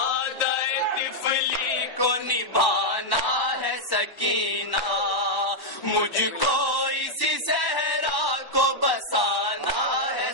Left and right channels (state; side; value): late; right; 1.1 ms